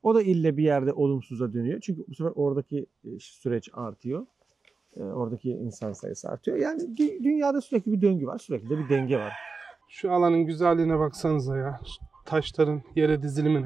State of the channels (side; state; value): left; quieter; 4.4 dB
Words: O da ille bir yerde olumsuza dönüyor. Çünkü bu sefer oradaki süreç artıyor. Oradaki insan sayısı artıyor. Yani dünyada sürekli bir döngü var. Sürekli de bir denge var. Şu alanın güzelliğine baksanıza ya. Şu taşların yere